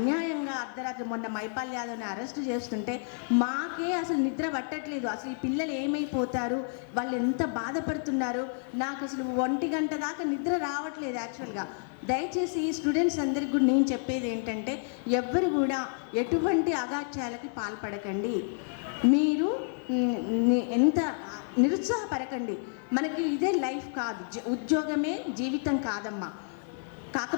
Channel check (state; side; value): silent; right; 58 dB below the other